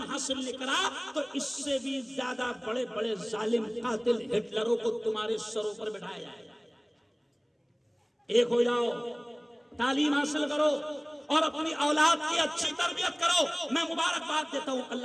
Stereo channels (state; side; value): identical; both; correlation 1.00